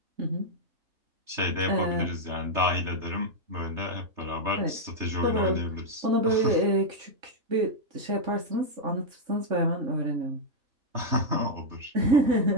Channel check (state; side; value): late; left; 3.3 ms